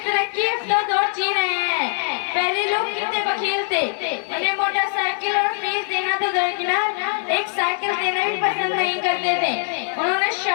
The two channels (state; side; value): silent; right; digital silence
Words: ترقی یافتہ دور جی رہے ہیں۔ پہلے لوگ کتنے بخیل تھے، انہیں موٹر سائیکل اور فیس دینا تو درکنار ایک سائیکل دینا بھی پسند نہیں کرتے تھے۔ انہوں نے